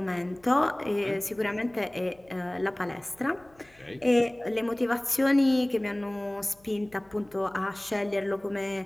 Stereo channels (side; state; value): left; noise; hum, 30 dB below the sound